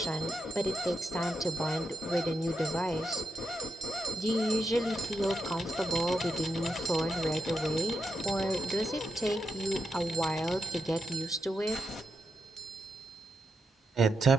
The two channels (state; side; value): normal; both; correlation 0.85